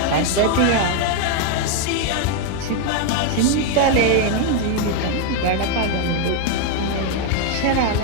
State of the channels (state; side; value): different; both; correlation 0.00